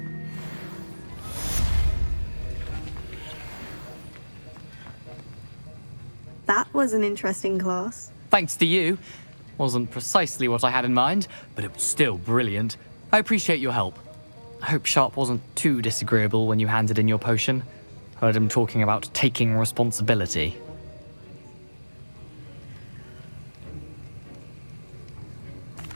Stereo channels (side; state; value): both; inverted; correlation -1.00